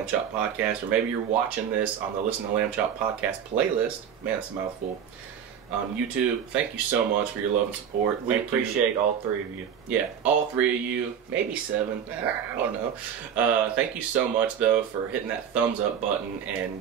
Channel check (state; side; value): quieter; left; 8.2 dB